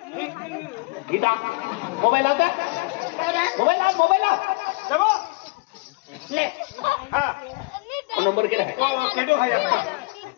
गीता मोबाइल आता मोबाइल सबो ले हां नंबर केला है ओ केडो है आपका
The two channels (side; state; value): right; quieter; 26.7 dB